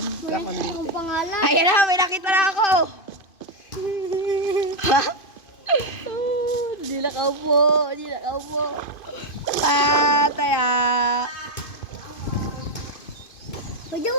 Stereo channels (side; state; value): right; late; 2.5 ms